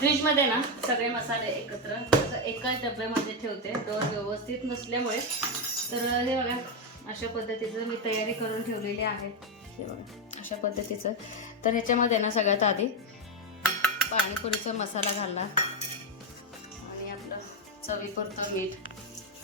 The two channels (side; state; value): both; normal; correlation 0.06